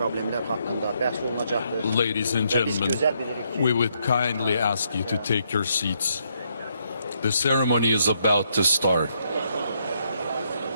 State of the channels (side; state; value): both; inverted; correlation -0.75